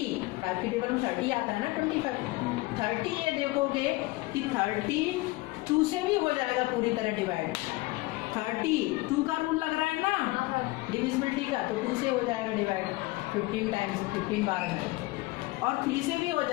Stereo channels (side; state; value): right; quieter; 21.5 dB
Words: 5 की टेबल में 30 आता है ना, 25 30 ये देखोगे कि 30 2 से भी हो जाएगा पूरी तरह डिवाइड। 30 2 का रूल लग रहा है ना डिविजिबिलिटी का, तो 2 से हो जाएगा डिवाइड 15 टाइम्स, 15 बार में, और 3 से भी हो